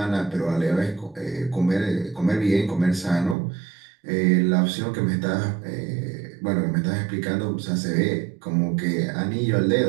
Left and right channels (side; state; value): left; drops out; at 3.4 s